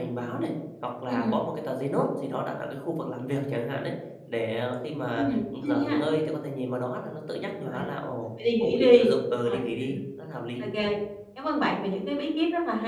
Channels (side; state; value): both; identical; correlation 1.00